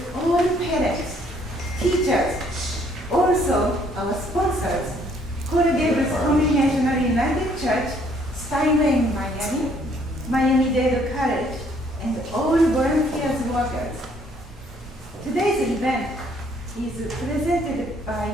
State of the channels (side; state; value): both; normal; correlation 0.64